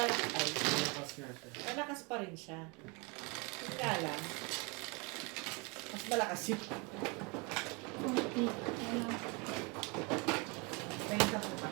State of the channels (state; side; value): quieter; left; 30.1 dB